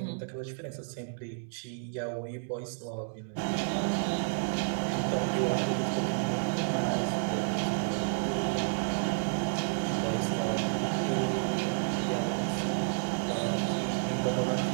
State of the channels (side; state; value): left; silent; 57 dB below the other